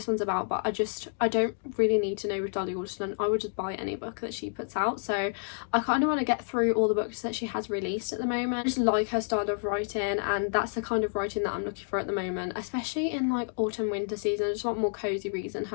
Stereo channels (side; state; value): right; silent; digital silence